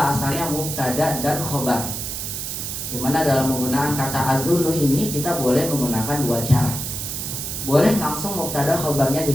asalnya mubtada dan khobar. Dimana dalam menggunakan kata azunnu ini kita boleh menggunakan 2 cara. Boleh langsung mubtada khobarnya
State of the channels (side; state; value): right; noise; hiss, 5 dB below the sound